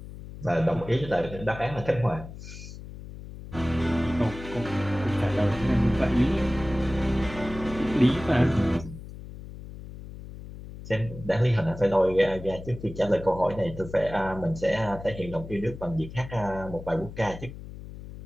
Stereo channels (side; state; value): left; noise; hum, 13 dB below the sound